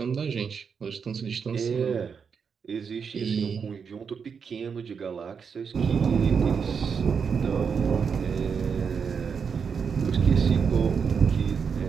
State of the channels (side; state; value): left; quieter; 6.3 dB